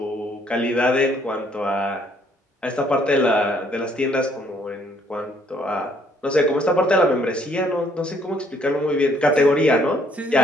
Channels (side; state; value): both; normal; correlation 0.66